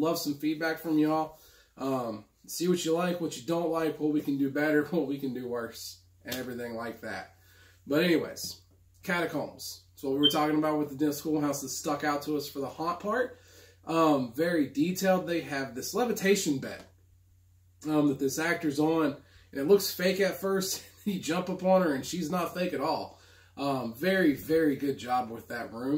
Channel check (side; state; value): both; identical; correlation 1.00